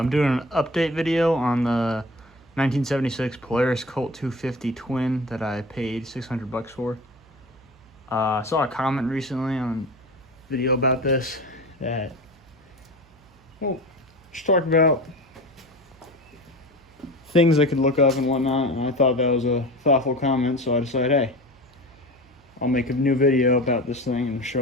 doing an update video on the 1976 Polaris Colt 250 Twin that I paid $600 for. I saw a comment recently on a video about this that, well, just talking about things I could look up and whatnot, and I thought that was a thoughtful comment, so I decided, hey, I'll make a new video about this thing and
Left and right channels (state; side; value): noise; right; hum, 28 dB below the sound